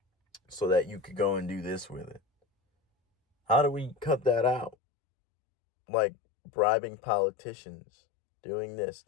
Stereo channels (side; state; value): right; drops out; at 4.8 s